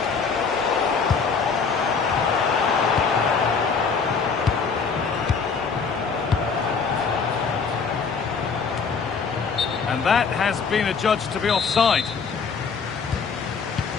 And that has been adjudged to be offside.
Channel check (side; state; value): right; quieter; 5.4 dB